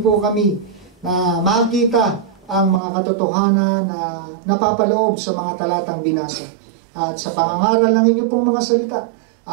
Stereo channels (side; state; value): left; drops out; at 2.8 s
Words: po kami na makita ang mga katotohanan na napapaloob sa mga talatang binasa. At sa pangangaral ng inyong pong mga salita,